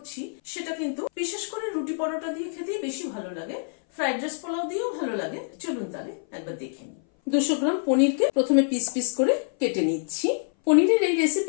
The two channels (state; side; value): silent; right; 58 dB below the other